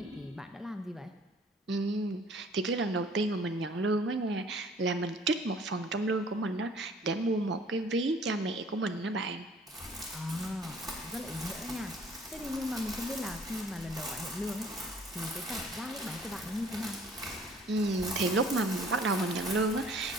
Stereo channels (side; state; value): both; normal; correlation 0.54